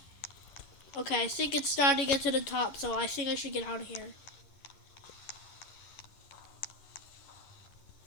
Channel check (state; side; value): late; right; 11 ms